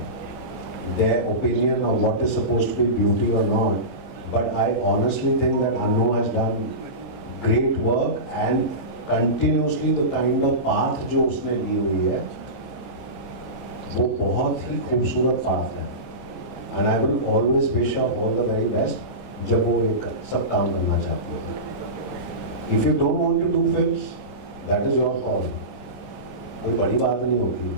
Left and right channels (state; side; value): late; right; 5.1 ms